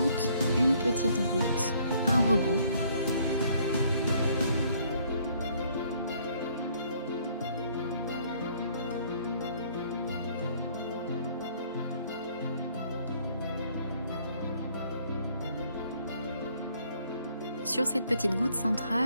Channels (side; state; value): both; inverted; correlation -0.63